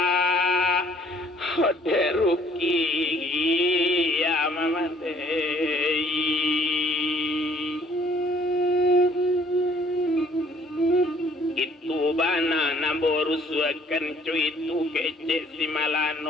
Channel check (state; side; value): normal; both; correlation 0.59